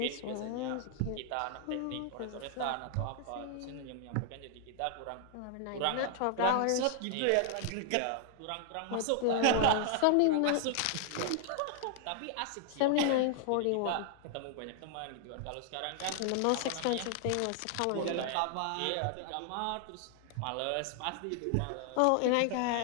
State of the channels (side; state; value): both; different; correlation 0.00